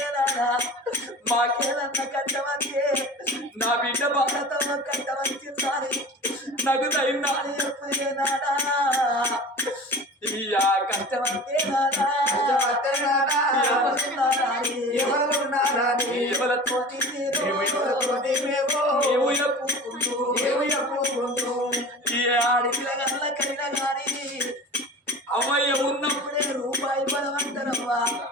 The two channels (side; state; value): both; normal; correlation 0.37